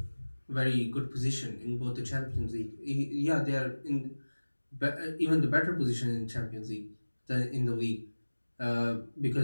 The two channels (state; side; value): inverted; both; correlation -1.00